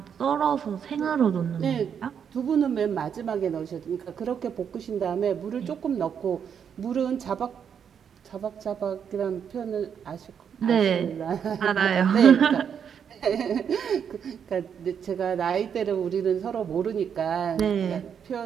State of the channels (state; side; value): quieter; left; 7.7 dB